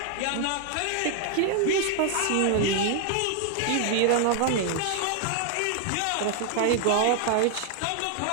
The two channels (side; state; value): both; different; correlation 0.00